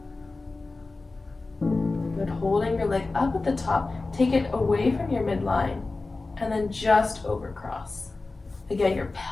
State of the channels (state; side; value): quieter; right; 3.5 dB